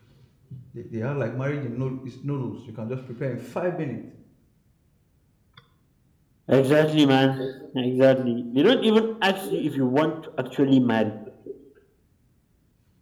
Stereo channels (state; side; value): identical; both; correlation 1.00